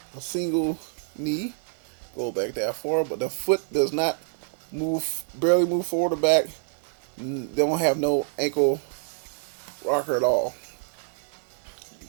knee. Go back that far, but the foot does not barely move forward or back. They don't have no ankle rocker at all.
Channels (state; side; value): silent; left; 60 dB below the other